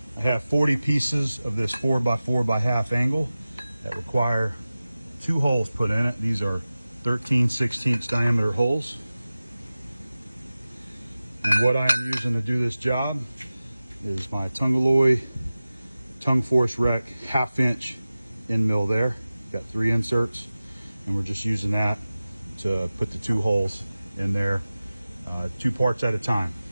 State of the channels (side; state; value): both; inverted; correlation -0.96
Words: I have 40 pieces of this 4x4x1/2 angle that require 2 holes put in it. These are 13/16 diameter holes. And what I am using to do this job is my Tungalloy tongue force rec 1/2 inch end mill there. Got 3 inserts, and we're just using that to put the 2 holes in there, 2 parts at a time.